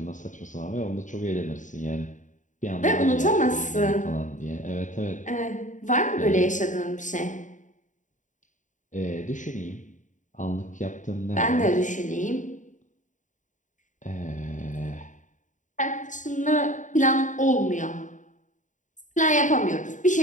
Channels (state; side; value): late; right; 0.36 ms